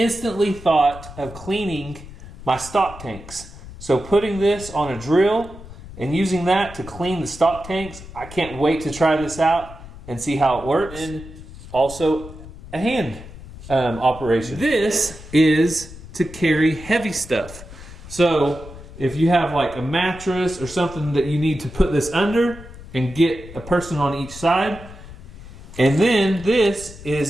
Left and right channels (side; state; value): left; noise; rumble, 15 dB below the sound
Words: thought of cleaning my stock tanks. So putting this on a drill and using that to clean the stock tanks, I can't wait to try this out and see how it works. And also a hand operation. This is to carry heavy stuff. So if you have like a mattress or something that you need to put this under and get a person on each side. And then this